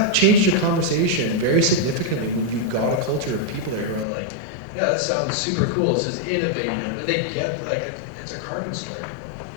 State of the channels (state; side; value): drops out; right; at 4.0 s